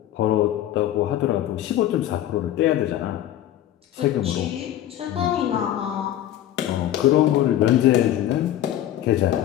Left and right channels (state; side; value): quieter; right; 12.4 dB